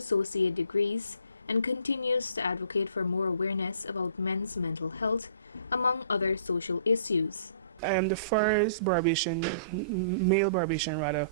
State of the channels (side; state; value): both; inverted; correlation -0.53